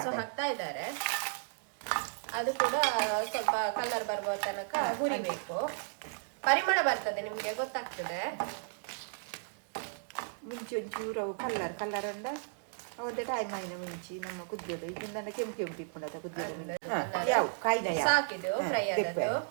ಹಾಕ್ತಾ ಇದ್ದಾರೆ. ಅದು ಕೂಡ ಸ್ವಲ್ಪ ಕಲರ್ ಬರುವ ತನಕ ಹುರಿಬೇಕು. ಪರಿಮಳ ಬರ್ತದೆ, ನಿಮ್ಗೆ ಗೊತ್ತಾಗ್ತದೆ. ಮುಂಚೆ ಒಂಚೂರು ಕಲರ್ ಅಂಡ ಒಂದು ಟೈಮ್ ಆಯ್ನ ಮುಂಚೆ ನಮ್ಮ ಕುದಿಯೋದು ಇದನ್ನ ಕೆಂಪು ತಿಪ್ಪುಣದ ಕುದಿಯೋದು ಸಾಕಿದು ಫ್ರೈ ಆದದ್ದು.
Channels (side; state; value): left; silent; digital silence